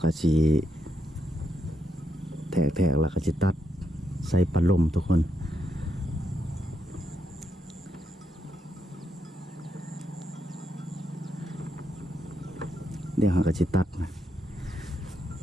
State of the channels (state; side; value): normal; both; correlation 0.80